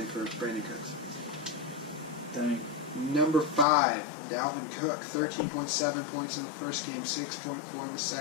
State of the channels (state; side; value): drops out; right; at 3.7 s